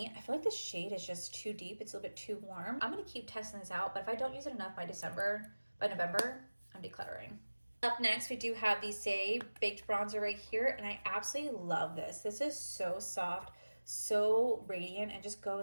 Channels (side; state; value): both; inverted; correlation -1.00